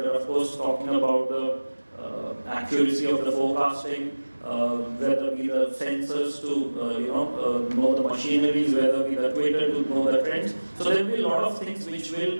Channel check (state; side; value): inverted; both; correlation -1.00